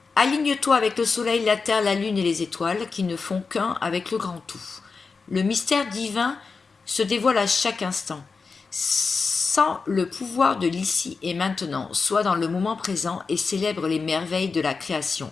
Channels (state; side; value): quieter; right; 4.7 dB